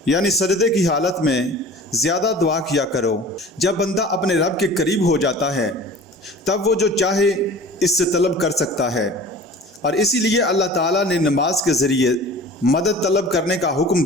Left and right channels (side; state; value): both; normal; correlation 0.41